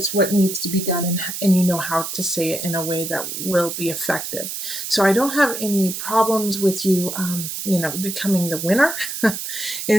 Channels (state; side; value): noise; right; hiss, 6 dB below the sound